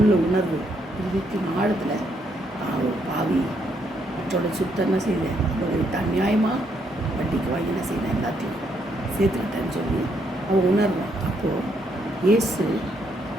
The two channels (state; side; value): normal; both; correlation 0.74